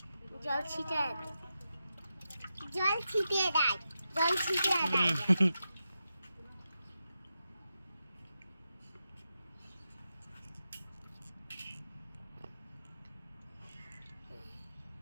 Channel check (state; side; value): inverted; both; correlation -0.89